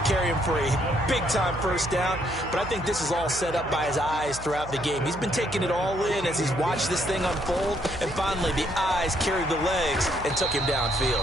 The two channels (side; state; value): right; noise; hum, 13 dB below the sound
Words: him for a big-time 1st down. But I think this is all set up by his eyes throughout the game. He's been taking it all in as he's watched this thing unfold. And finally, the eyes carried the legs and took him